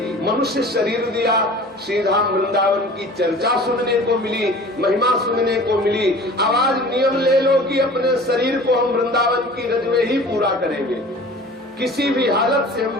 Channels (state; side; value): normal; both; correlation 0.43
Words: मनुष्य शरीर दिया, श्रीधाम वृंदावन की चर्चा सुनने को मिली, महिमा सुनने को मिली। अब आज नियम ले लो कि अपने शरीर को हम वृंदावन की रज में ही पूरा करेंगे, किसी भी हालत से हम